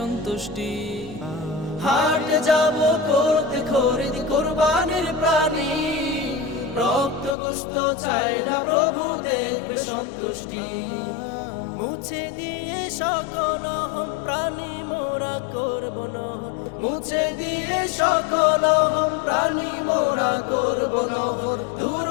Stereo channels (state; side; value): drops out; right; at 7.4 s